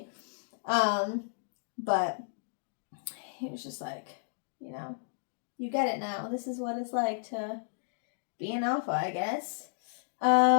But he was just like, you get it now. This is what it's like to be an alpha, I guess.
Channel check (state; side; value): silent; right; digital silence